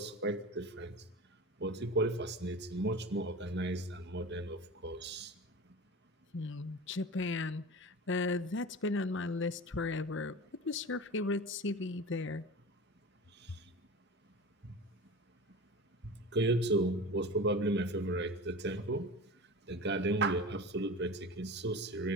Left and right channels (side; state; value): both; normal; correlation 0.32